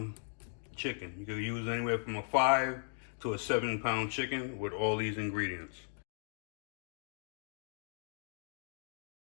chicken. You can use anywhere from a 5 to a 7 pound chicken with all these ingredients.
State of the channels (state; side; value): silent; right; digital silence